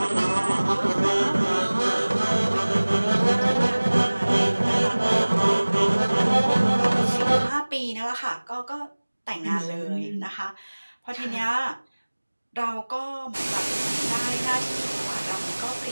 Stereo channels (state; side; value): inverted; both; correlation -1.00